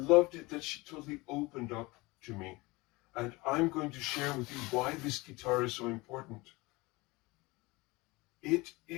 it that she totally opened up to me. And I'm going to share with you why this guitar is so important. It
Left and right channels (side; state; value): right; quieter; 23.1 dB